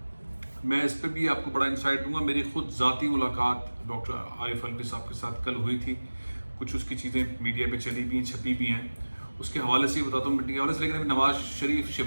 मैं इस पर भी आपको बड़ा इंसाइट दूंगा। मेरी खुद ज़ाती मुलाकात डॉक्टर आरिफ अलवी साहब के साथ कल हुई थी। कुछ उसकी चीज़ें मीडिया पे चली भी हैं, छपी भी हैं, उसके हवाले से ही बताता हूँ मीटिंग के हवाले से। लेकिन अभी नवाज शरीफ,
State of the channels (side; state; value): both; inverted; correlation -1.00